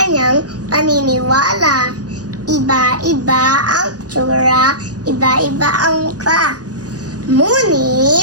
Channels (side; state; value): left; late; 0.68 ms